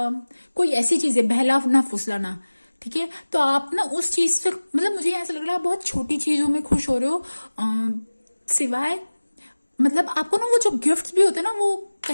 कोई ऐसी चीज है, बहला ना फुसलाना। ठीक है, तो आप ना उस चीज से, मतलब मुझे ऐसा लग रहा है बहुत छोटी चीजों में खुश हो रहे हो, सिवाय मतलब आपको ना वो जो गिफ्ट्स भी होते हैं ना, वो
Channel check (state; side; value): inverted; both; correlation -1.00